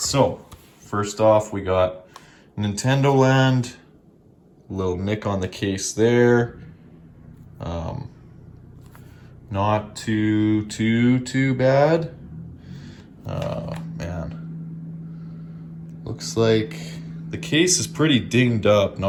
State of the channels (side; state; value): both; identical; correlation 1.00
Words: first off, we got Nintendo Land, little nick on the case there. Not too bad. Man. Looks like the case is pretty dinged up,